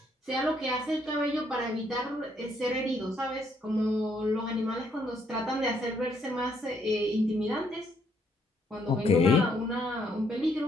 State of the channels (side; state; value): both; normal; correlation 0.71